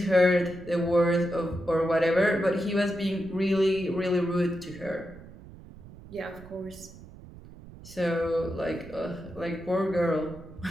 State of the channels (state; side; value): noise; right; rumble, 18 dB below the sound